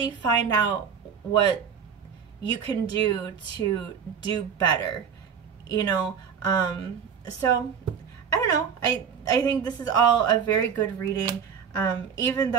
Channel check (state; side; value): quieter; left; 7.1 dB